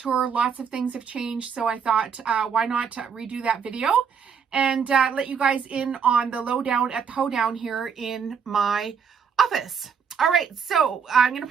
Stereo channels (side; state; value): left; quieter; 6.7 dB